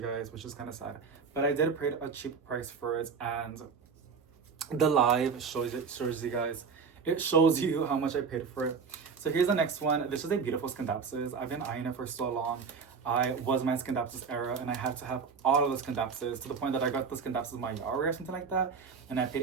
guys, which is kind of sad. But I did pay a cheap price for it, and the live shows you guys. It shows you how much I paid for it. So here's the next one. This is a beautiful Scandapsis. I've been eyeing it for so long. I was my Scandapsis era, and I had to have all of the Scandapsis to the point that I got the Scandapsis my Yari or something like that, and I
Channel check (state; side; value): quieter; left; 5.6 dB